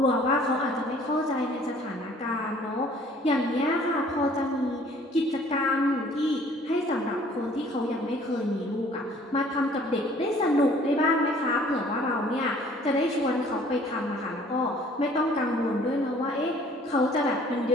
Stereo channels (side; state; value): both; normal; correlation 0.55